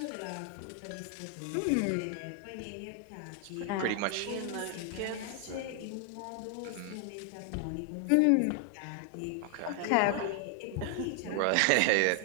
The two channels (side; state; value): both; different; correlation 0.00